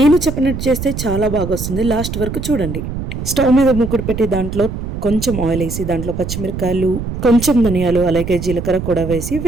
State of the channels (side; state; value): right; noise; rumble, 6 dB below the sound